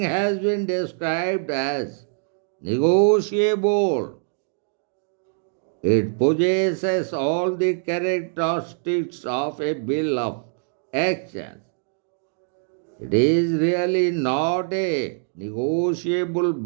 been described as negotiable, it possesses all the characteristics of a bill of exchange. It is really not a negotiable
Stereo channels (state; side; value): silent; left; 63 dB below the other